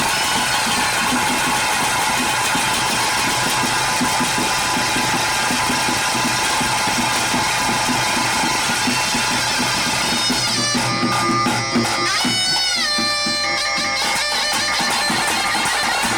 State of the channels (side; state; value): right; noise; hum, 22 dB below the sound